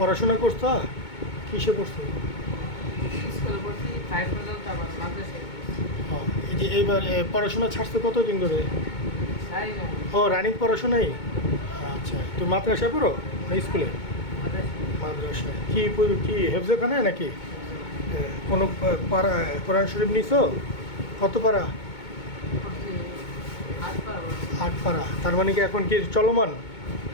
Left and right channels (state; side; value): late; right; 2.2 ms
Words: করছো? কিসে পড়ছো? স্কুলে পড়ছি 5 পর্যন্ত, আবার মাদ্রাসায় পড়ছি। ও, এই যে এইবার পড়াশোনা ছাড়ছো কতদিন ধরে? সারি না ও, রানিং পড়াশোনাই। আচ্ছা, তুমি মাদ্রাসায় পড়ো না স্কুলে? মাদ্রাসায়। মাদ্রাসায় কি হেফজখানে নাকি কোনো পাড়া কোরআন শরীফ নিছো? কত পাড়া? পড়ছি 8 পারা পড়ছি। 8 পাড়া। তার মানে কি এখন কি চলমান?